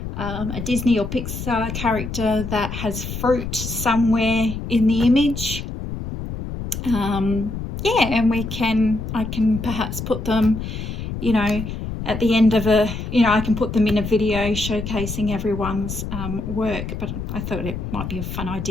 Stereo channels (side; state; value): left; noise; rumble, 6 dB below the sound